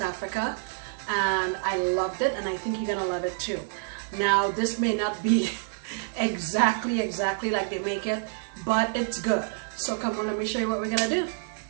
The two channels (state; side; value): silent; left; digital silence